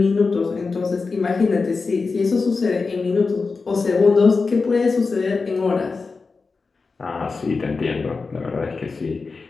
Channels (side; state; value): right; quieter; 4.3 dB